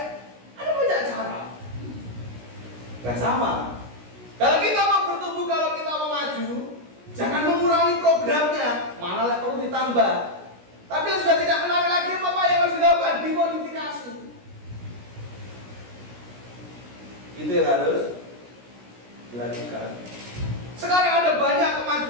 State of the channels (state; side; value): late; left; 16 ms